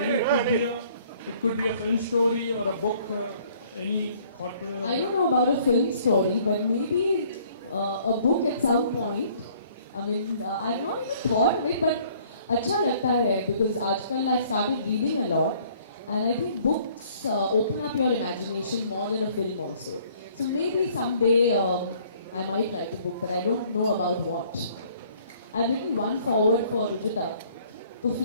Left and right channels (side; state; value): both; inverted; correlation -0.59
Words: it could be a film story or a book. Any thought? I don't know about a film story, but maybe a book at some point. I mean, I've not even thought of it, but अच्छा लगता है because आजकल I've started reading a lot, and I think books open up your imagination more than a film also. So maybe someday I might write a book, but I don't know about what. I've written one forward for Rujita. तो